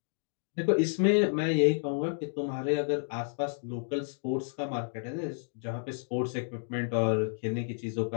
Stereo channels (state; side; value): silent; right; digital silence